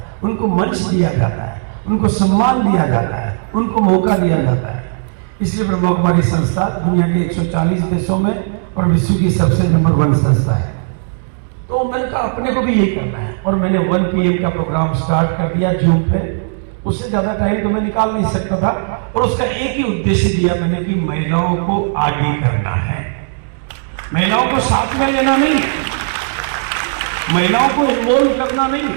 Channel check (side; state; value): left; silent; digital silence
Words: उनको मंच दिया जाता है, उनको सम्मान दिया जाता है, उनको मौका दिया जाता है। इसलिए ब्रह्मा कुमारी संस्था दुनिया के 140 देशों में और विश्व की सबसे नंबर 1 संस्था है। तो मैंने कहा अपने को भी यही करना है, और मैंने 1 PM का प्रोग्राम स्टार्ट कर दिया जून पे। उससे ज्यादा टाइम तो मैं निकाल नहीं सकता था, और उसका एक ही उद्देश्य दिया मैंने कि महिलाओं को आगे करना है, महिलाओं को साथ में लेना नहीं, महिलाओं को इन्वॉल्व करना नहीं।